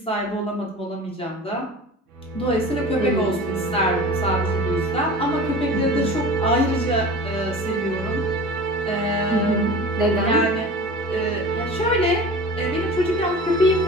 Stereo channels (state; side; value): normal; both; correlation 0.37